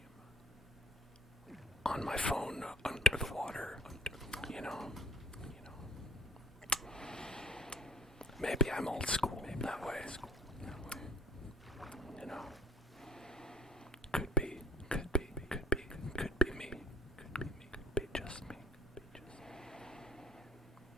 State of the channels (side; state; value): both; normal; correlation 0.52